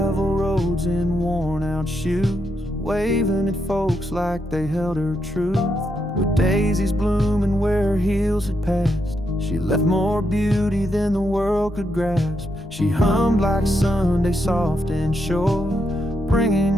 roads in worn-out shoes, waving at folks like they held her truth. With daisies blooming where her heels had passed, she left more beauty than the world could grasp. She hummed like Sunday, soft and sure,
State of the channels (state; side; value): normal; both; correlation 0.81